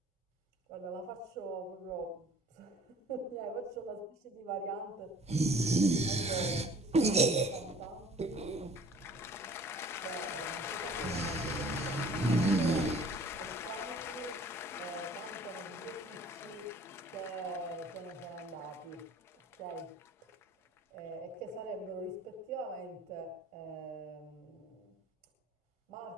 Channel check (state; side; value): normal; both; correlation 0.51